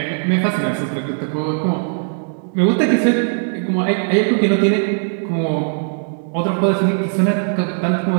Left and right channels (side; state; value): left; silent; digital silence